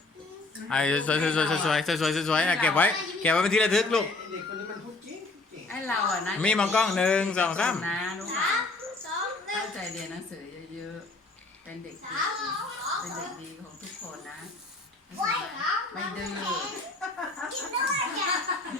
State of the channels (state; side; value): quieter; right; 3.2 dB